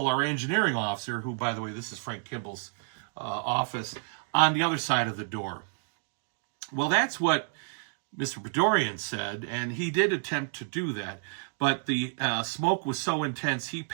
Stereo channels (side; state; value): left; silent; 58 dB below the other